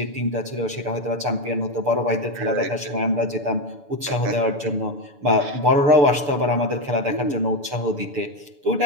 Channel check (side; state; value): left; late; 7.0 ms